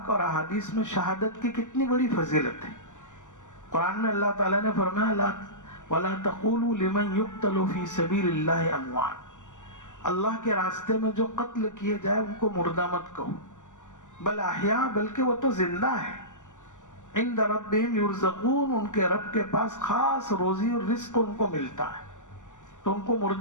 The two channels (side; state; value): right; late; 0.87 ms